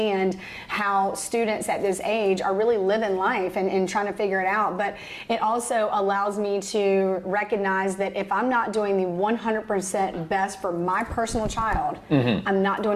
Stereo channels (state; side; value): identical; both; correlation 1.00